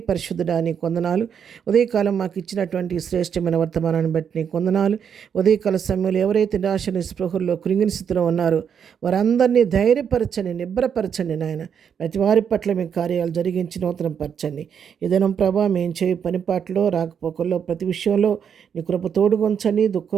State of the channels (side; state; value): left; quieter; 7.6 dB